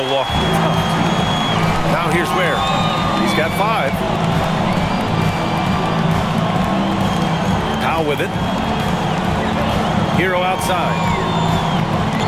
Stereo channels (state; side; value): identical; both; correlation 1.00